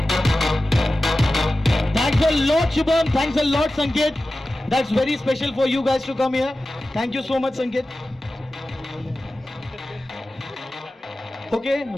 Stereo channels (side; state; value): both; normal; correlation 0.95